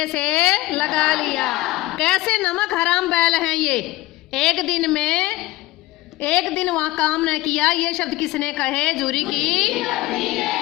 से लगा लिया। कैसे नमक हराम बैल हैं ये? एक दिन वहाँ काम न किया। ये शब्द किसने कहे? जूरी की।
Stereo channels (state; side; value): quieter; right; 18.3 dB